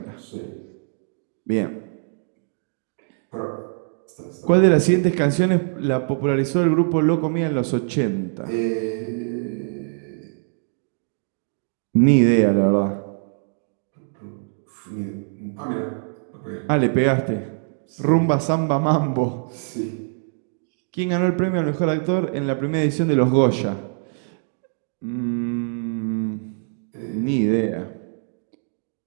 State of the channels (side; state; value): left; silent; 63 dB below the other